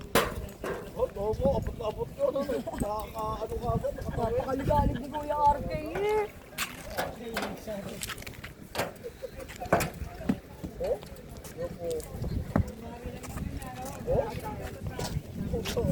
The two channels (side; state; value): both; identical; correlation 1.00